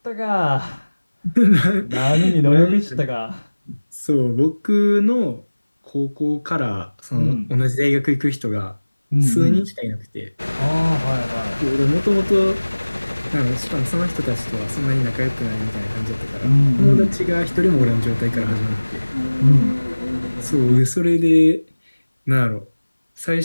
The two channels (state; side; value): inverted; both; correlation -1.00